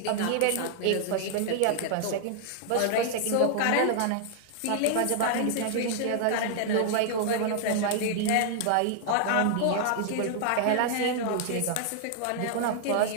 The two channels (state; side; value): different; both; correlation -0.01